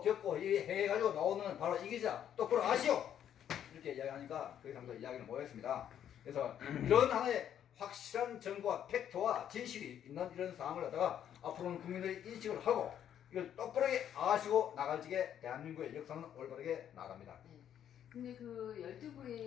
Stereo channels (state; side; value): quieter; right; 9.8 dB